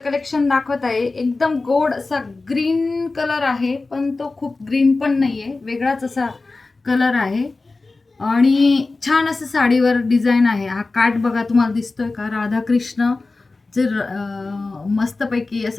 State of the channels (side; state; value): right; quieter; 3.6 dB